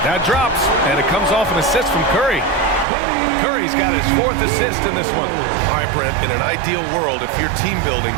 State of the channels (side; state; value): left; drops out; at 2.9 s